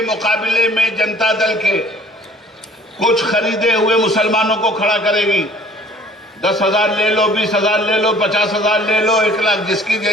मुकाबले में जनता दल के कुछ खरीदे हुए मुसलमानों को खड़ा करेगी। 10,000 ले लो, 20,000 ले लो, 50,000 ले लो, 1 लाख, जिसकी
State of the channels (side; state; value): both; normal; correlation 0.52